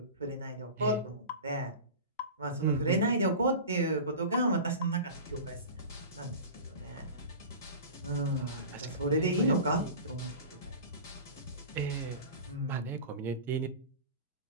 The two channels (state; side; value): inverted; both; correlation -0.34